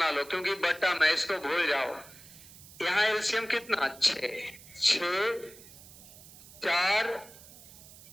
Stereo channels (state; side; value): noise; right; hiss, 19 dB below the sound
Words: लो, क्योंकि बटा में, इसको भूल जाओ। यहाँ एलसीएम कितना? 6, 4,